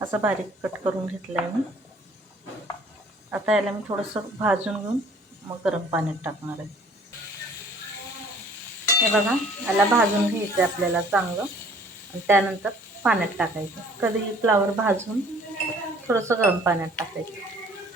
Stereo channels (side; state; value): both; normal; correlation 0.54